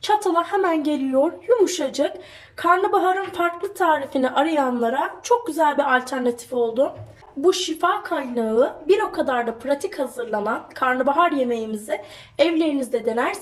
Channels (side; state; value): both; identical; correlation 1.00